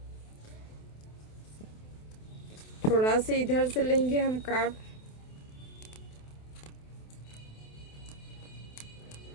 थोड़ा से इधर से लेंगे हम कार्ड।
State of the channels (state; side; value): late; right; 28 ms